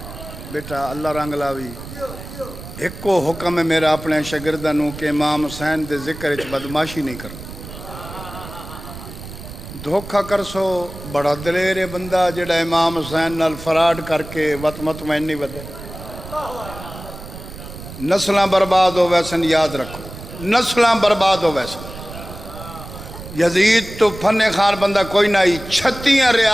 بیٹا اللہ رنگ لاوی ایک کو حکم ہے میرا اپنے شاگردانوں کہ امام حسین دے ذکر اچ بدماشی نہیں کرنا، دھوکہ کر سو بڑا دلیر بندہ جڑا امام حسین نال فراڈ کر کے وط مطمئن نہیں بدے، نسلاں برباد ہو ویسن یاد رکھو، نسلاں برباد ہو ویسن۔ یزید تو فن خان بندہ کوئی نہ آئی، 36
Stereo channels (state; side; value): noise; right; rumble, 13 dB below the sound